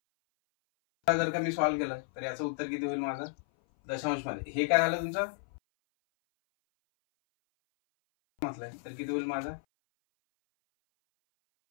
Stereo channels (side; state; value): right; silent; 56 dB below the other